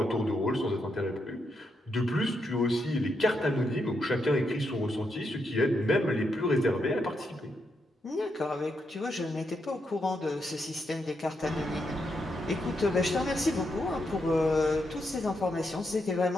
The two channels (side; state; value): both; normal; correlation 0.81